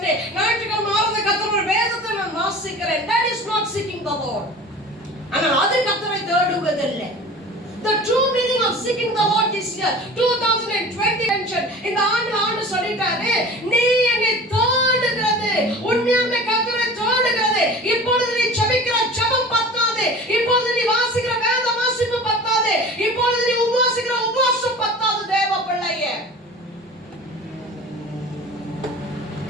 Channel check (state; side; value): normal; both; correlation 0.39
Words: ஞாயிற்றுக்கிழமை ஆராதனை கர்த்தருடைய வேதத்தை நான் வாசிக்கிறேன். That is not seeking the Lord. ஆனால் அது கர்த்தரை தேடுவதில்லை. The true meaning of seeking the Lord this year, 2020 mention, இந்த ஆண்டு சொல்லிட்டாரு, நீ என்னை தேடுகிறது, உண்மையாலுமே கர்த்தரை தேடுகிறது. இப்பொழுது நீ ஜெபிக்கிற ஜெபம் பத்தாது, இப்பொழுது நீ வாசிக்கிற வேத வாசிப்பு பத்தாது, இப்பொழுது நீ உபவாசிக்கிற உபவாசம் பத்தாது. தேவ பிள்ளையே,